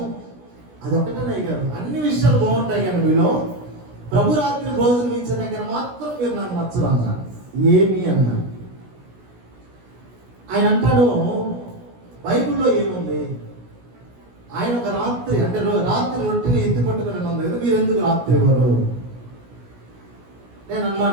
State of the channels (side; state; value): left; late; 17 ms